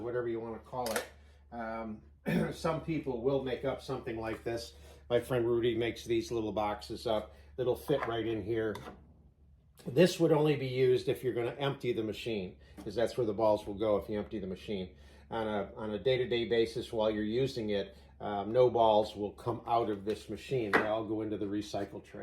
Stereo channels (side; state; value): both; identical; correlation 1.00